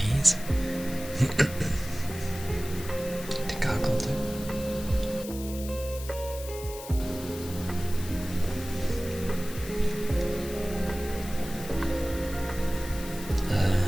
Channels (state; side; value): noise; left; hiss, 13 dB below the sound